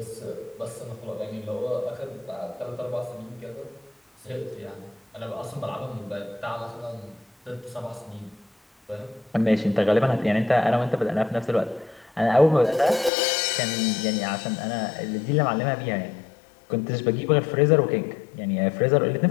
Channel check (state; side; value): drops out; right; at 13.1 s